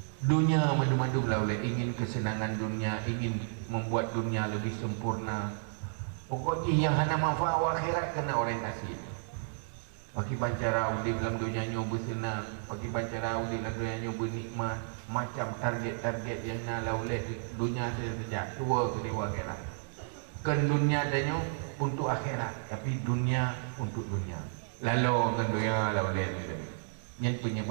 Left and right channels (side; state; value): left; silent; digital silence